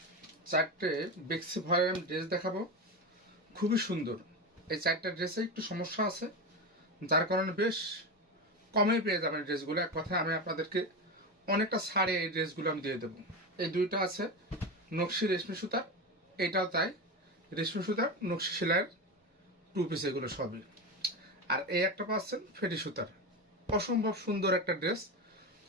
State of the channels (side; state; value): both; normal; correlation 0.19